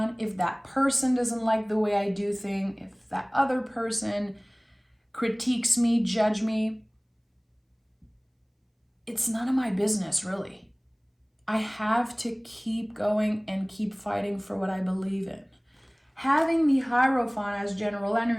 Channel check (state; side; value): identical; both; correlation 1.00